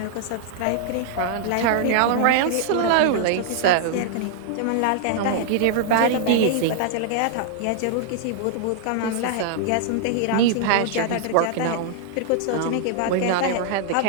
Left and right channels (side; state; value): both; different; correlation -0.01